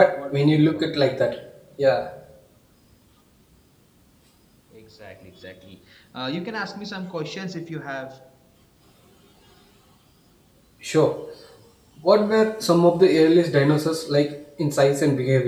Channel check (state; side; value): identical; both; correlation 1.00